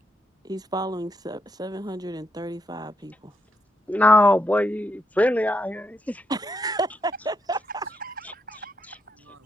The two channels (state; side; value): normal; both; correlation 0.80